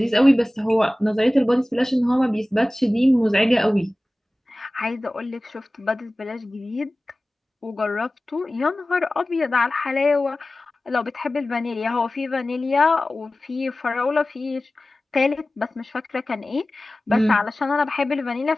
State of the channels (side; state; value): both; normal; correlation 0.97